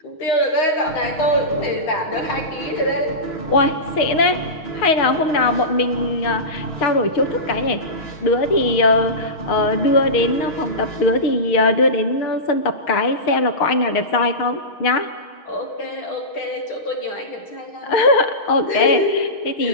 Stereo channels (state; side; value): late; right; 6.4 ms